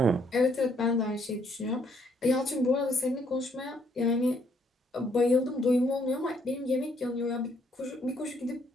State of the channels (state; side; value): normal; both; correlation 0.69